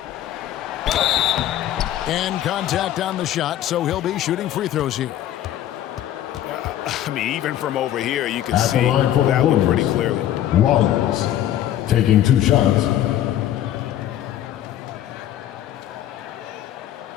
And contact on the shot, so he'll be shooting free throws here. I mean, even from over here, you can see that one pretty clearly. Rollins taking 2 shots.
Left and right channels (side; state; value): right; quieter; 12.0 dB